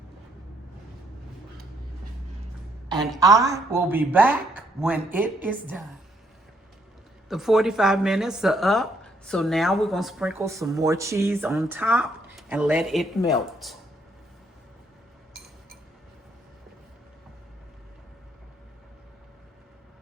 And I will be back when it is done. The 45 minutes are up, so now we're gonna sprinkle some more cheese on top and let it melt.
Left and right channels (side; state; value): both; normal; correlation 0.71